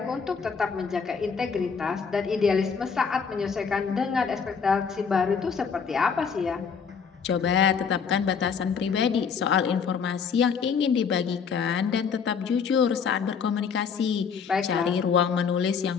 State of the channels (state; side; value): quieter; right; 6.2 dB